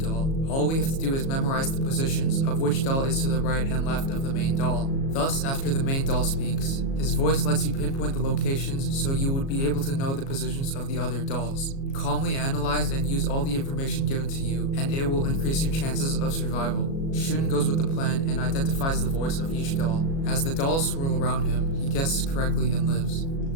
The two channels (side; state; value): right; late; 37 ms